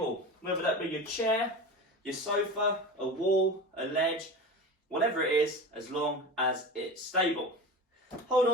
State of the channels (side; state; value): both; normal; correlation 0.30